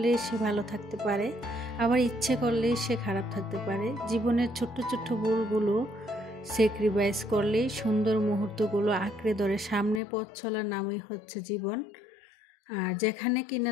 সে ভালো থাকতে পারে, আবার ইচ্ছে করলে সে খারাপ থাকতে পারে। জীবনের ছোট্ট ছোট্ট ভুলগুলো স্যাক্রিফাইস করলেই সুন্দর মুহূর্তগুলো আঁকড়ে ধরে সামনে পথ চলার নামই হচ্ছে জীবন। আর যেখানে কিনা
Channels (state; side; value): drops out; right; at 10.0 s